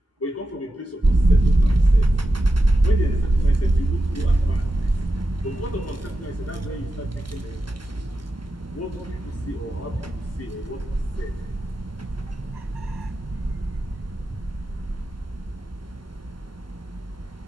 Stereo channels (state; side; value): normal; both; correlation 0.90